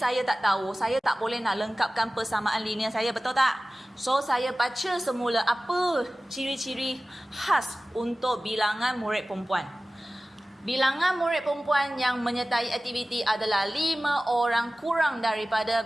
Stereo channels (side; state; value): both; normal; correlation 0.97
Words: tak tahu, saya tak boleh nak lengkapkan persamaan linear saya, betul tak? So, saya baca semula apa ciri-ciri khas untuk bilangan murid perempuan. Bilangan murid perempuan yang menyertai aktiviti adalah 5 orang kurang daripada